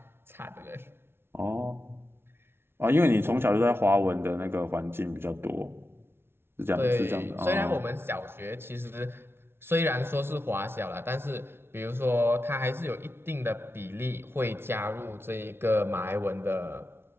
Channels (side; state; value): left; late; 0.12 ms